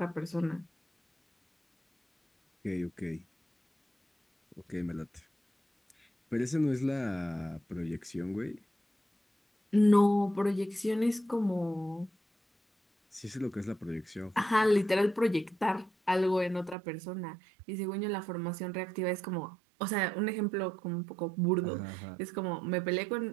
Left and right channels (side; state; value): left; drops out; at 16.8 s